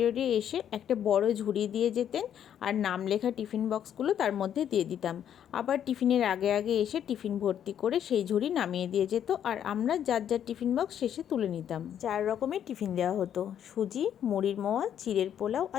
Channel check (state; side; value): quieter; right; 9.6 dB